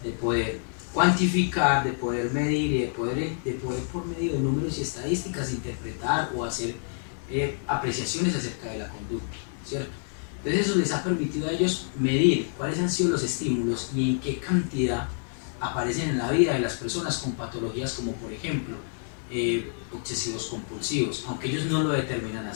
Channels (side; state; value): right; silent; 59 dB below the other